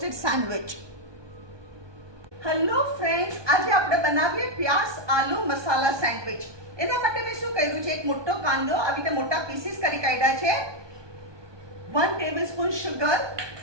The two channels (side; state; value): left; late; 1.2 ms